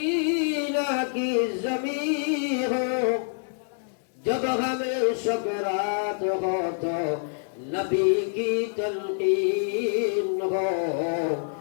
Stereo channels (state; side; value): silent; right; digital silence